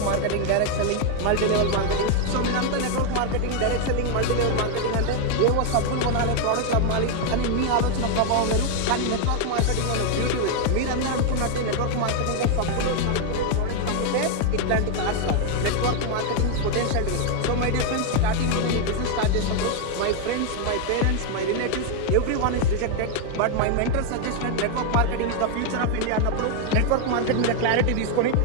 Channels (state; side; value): different; both; correlation 0.01